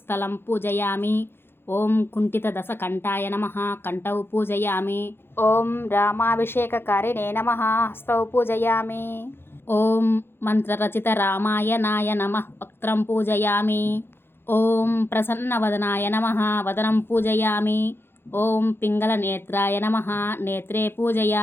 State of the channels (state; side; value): late; right; 0.11 ms